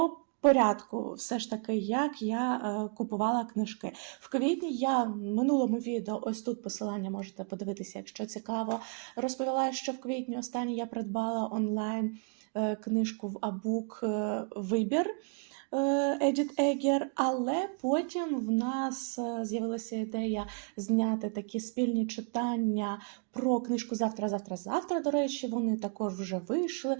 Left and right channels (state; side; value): quieter; left; 37.8 dB